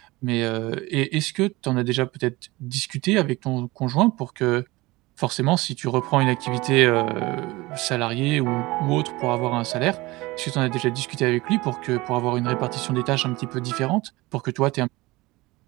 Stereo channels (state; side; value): quieter; left; 21.2 dB